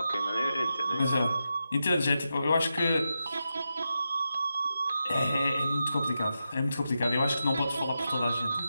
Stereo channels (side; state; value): both; inverted; correlation -0.88